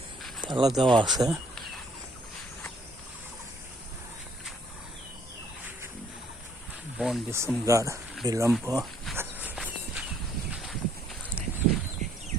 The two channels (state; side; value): normal; both; correlation 0.64